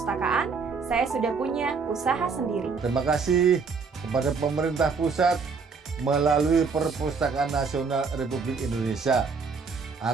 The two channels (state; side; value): quieter; left; 5.0 dB